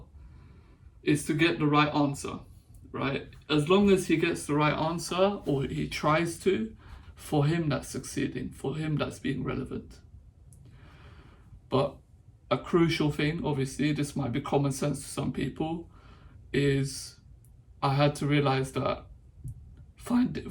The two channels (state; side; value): identical; both; correlation 1.00